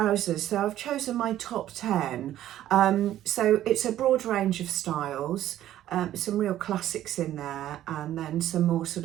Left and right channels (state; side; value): quieter; left; 12.7 dB